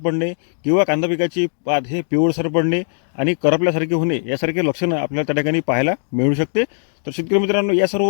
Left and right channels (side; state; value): right; silent; digital silence